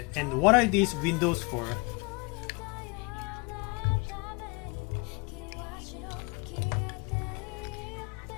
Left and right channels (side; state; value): right; quieter; 29.9 dB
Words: And what are these windows for?